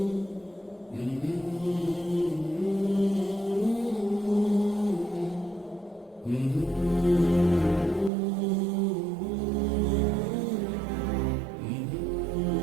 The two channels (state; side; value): drops out; left; at 8.1 s